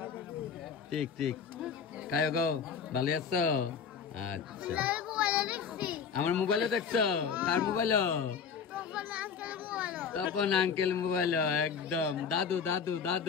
ঠিক ঠিক খাও গো ভালো আছো আচ্ছা আমার মোবাইলে দেখছো কার মোবাইল তপন আঙ্কেল মোবাইল একদম দাদু দাদু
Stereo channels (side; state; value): right; quieter; 6.5 dB